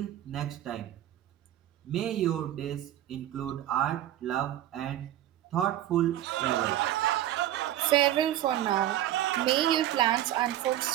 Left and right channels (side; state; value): left; quieter; 12.7 dB